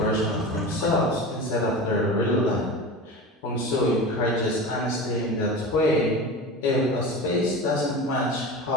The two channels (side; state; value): both; normal; correlation 0.30